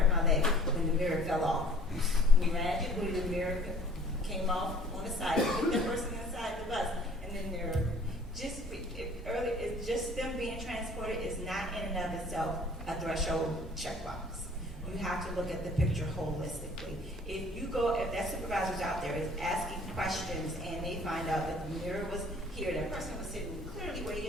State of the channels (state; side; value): normal; both; correlation 0.52